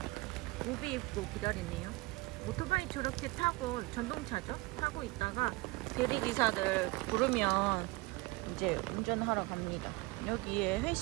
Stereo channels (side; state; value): left; quieter; 23.0 dB